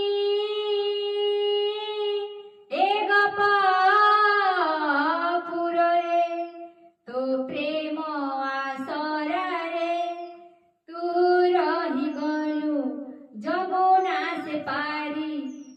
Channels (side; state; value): both; identical; correlation 1.00